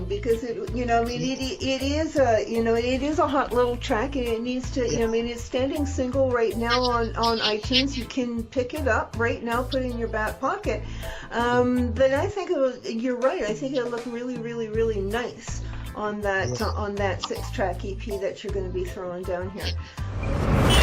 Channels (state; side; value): identical; both; correlation 1.00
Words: because it is a hot little track, and it needs to, you know, I mean, it's standing single right now on iTunes. You can pick it up right now, put it in your back pocket. But I think you're right. I think it'll look really nice on that 6-track EP that you're going to be throwing down here.